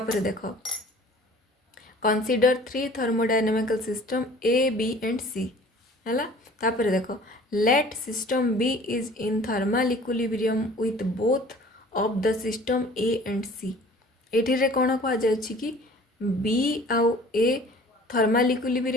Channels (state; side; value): normal; both; correlation 0.48